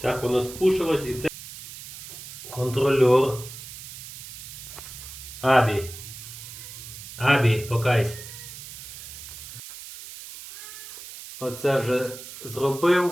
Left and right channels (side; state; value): right; noise; hiss, 13 dB below the sound